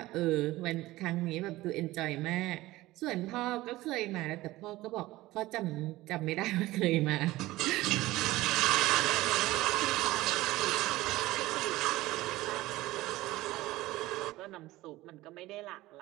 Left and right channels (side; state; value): left; quieter; 17.9 dB